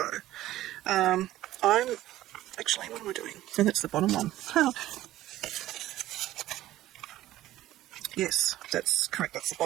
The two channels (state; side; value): quieter; left; 14.9 dB